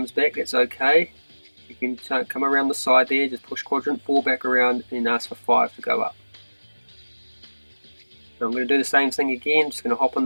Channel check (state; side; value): inverted; both; correlation -1.00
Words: back, that's okay. You can come around the side there, just push quadrant 4 back around and ask for 5 to go up. So I'm going to do the same thing again, just going to hop on